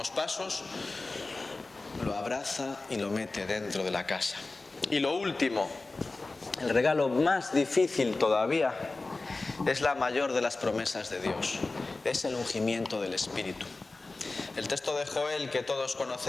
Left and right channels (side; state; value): right; quieter; 3.4 dB